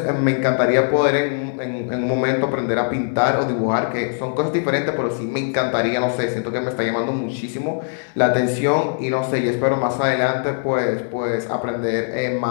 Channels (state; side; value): silent; right; digital silence